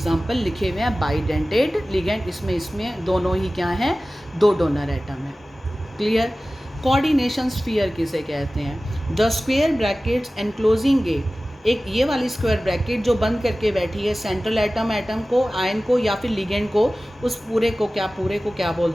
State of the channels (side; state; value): both; normal; correlation 0.97